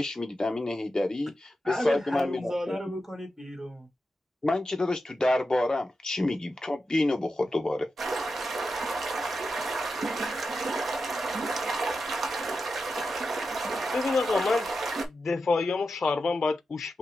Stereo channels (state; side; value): normal; both; correlation 0.90